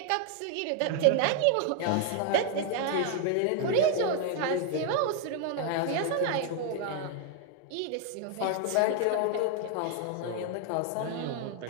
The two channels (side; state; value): both; different; correlation 0.00